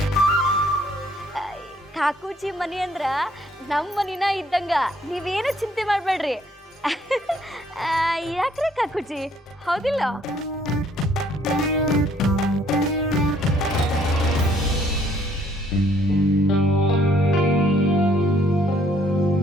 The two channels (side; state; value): both; normal; correlation 0.64